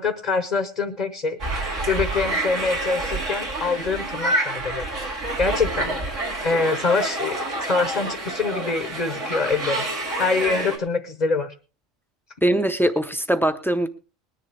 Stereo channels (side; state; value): both; normal; correlation 0.52